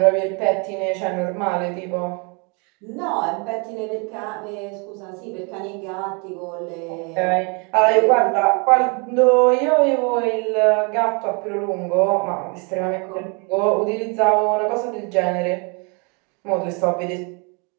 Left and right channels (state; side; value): quieter; left; 33.5 dB